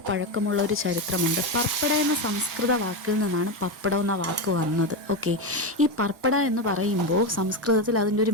പഴക്കമുള്ള ഒരു ചരിത്രമുണ്ട്. പർപ്പട എന്ന സംസ്കൃത വാക്കിൽ നിന്നാണ് പപ്പടം എന്ന വാക്ക് വന്നത്. ഈ പർപ്പട എന്ന് പറയുമ്പോൾ സംസ്കൃതത്തിൽ അതിൻ്റെ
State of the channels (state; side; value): normal; both; correlation 0.13